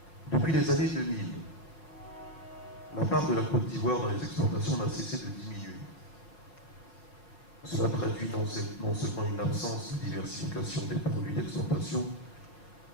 Depuis les années 2000, la part de la Côte d'Ivoire dans les exportations n'a cessé de diminuer. Cela traduit non seulement une absence de diversification des produits d'exportation,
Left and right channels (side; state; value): right; late; 5.2 ms